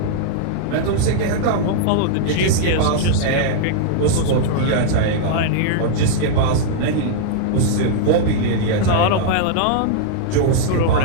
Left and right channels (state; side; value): different; both; correlation -0.01